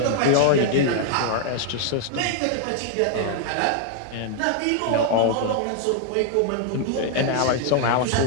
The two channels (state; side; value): different; both; correlation 0.00